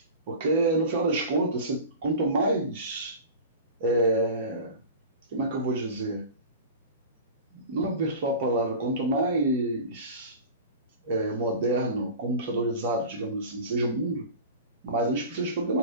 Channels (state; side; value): inverted; both; correlation -0.34